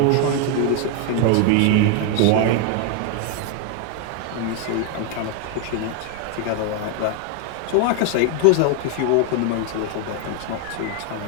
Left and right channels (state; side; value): different; both; correlation 0.01